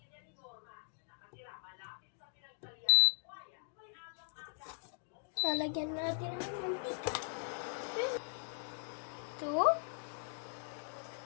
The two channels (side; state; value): right; silent; digital silence